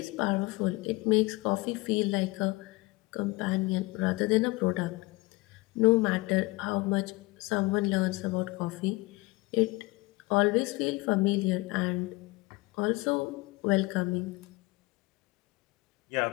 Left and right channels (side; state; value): right; quieter; 22.8 dB